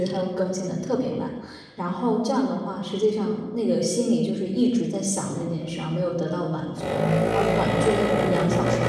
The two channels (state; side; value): identical; both; correlation 1.00